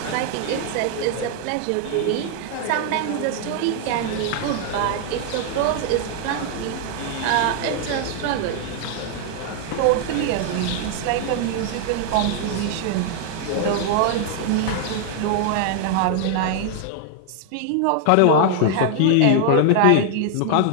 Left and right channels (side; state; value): both; different; correlation 0.00